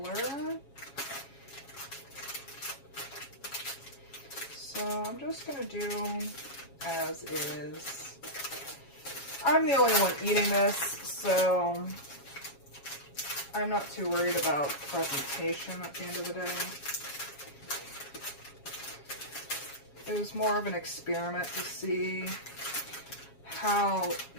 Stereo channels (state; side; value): late; right; 7.3 ms